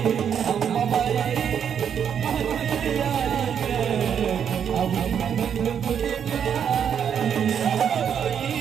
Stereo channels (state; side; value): quieter; left; 8.1 dB